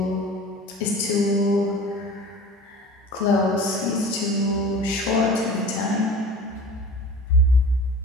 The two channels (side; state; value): both; normal; correlation 0.40